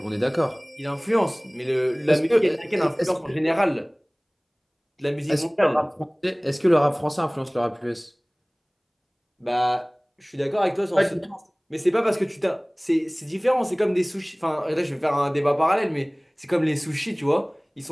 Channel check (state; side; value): identical; both; correlation 1.00